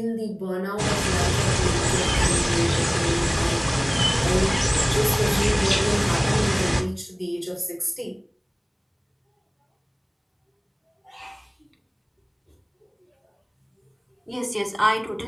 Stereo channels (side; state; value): both; identical; correlation 1.00